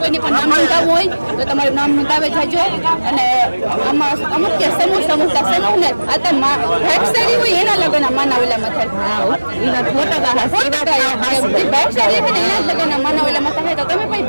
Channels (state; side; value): inverted; both; correlation -1.00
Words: પણ નામ નોંધાવવું હોય તો તમારું નામ નોંધાવે જાજો. અને આમાં અમુક કે સમૂહ ને આ તો ભાગશાળી હોય એના લગ્ન માનાવેલામાં થાય. ભાગશાળી છે ને એના લગ્ન માનાવેલામાં થાય તો તમે પણ